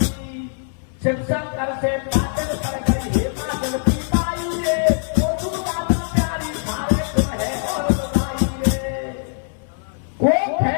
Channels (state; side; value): silent; right; 58 dB below the other